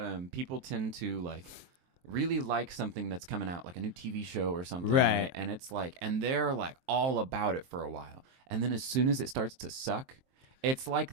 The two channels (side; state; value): left; late; 23 ms